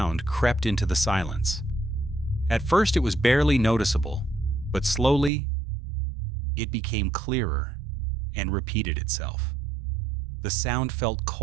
crept into the silence. At first, it was barely noticeable, but slowly, it became clearer and repeated itself. The sound felt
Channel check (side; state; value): left; drops out; at 5.3 s